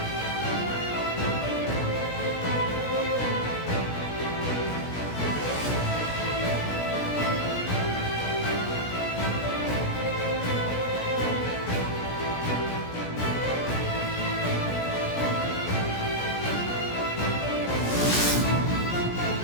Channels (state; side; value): late; right; 17 ms